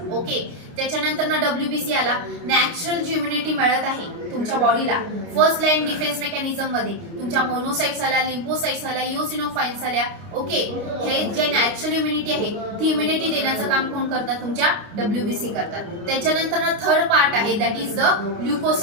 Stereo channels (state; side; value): late; left; 29 ms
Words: ओके. त्याच्यानंतर ना डब्ल्यूबीसी आला, नॅचरल जी इम्युनिटी मिळत आहे तुमच्या बॉडीला फर्स्ट लाईन डिफेन्स मेकॅनिझम मध्ये. तुमच्या मोनोसाइट्स आल्या, लिम्फोसाइट्स आल्या, इओसिनोफाइल्स आल्या, ओके. हे जे नॅचरल इम्युनिटी आहे ती इम्युनिटी देण्याचं काम कोण करतात, तुमच्या डब्ल्यूबीसी करतात. त्याच्यानंतर ना थर्ड पार्ट आहे, that is the